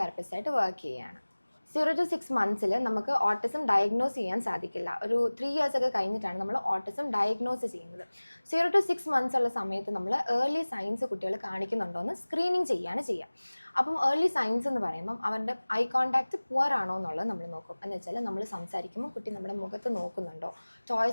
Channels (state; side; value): inverted; both; correlation -1.00